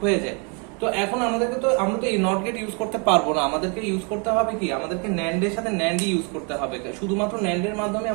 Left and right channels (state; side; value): quieter; left; 35.0 dB